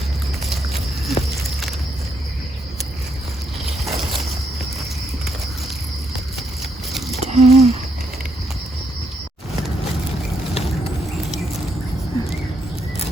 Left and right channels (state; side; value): normal; both; correlation 0.77